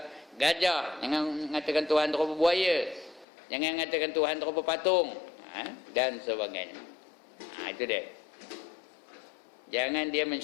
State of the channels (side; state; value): right; drops out; at 3.2 s